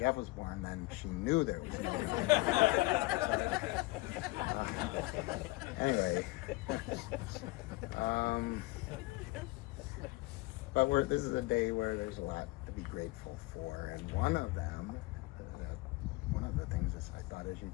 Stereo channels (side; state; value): right; quieter; 21.6 dB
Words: was born, then she knew there was no God. Anyway. But this is a day where there's a lot to be grateful for. And one of the things is, I thought, as you